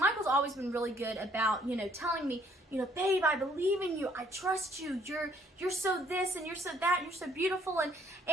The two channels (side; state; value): both; normal; correlation 0.64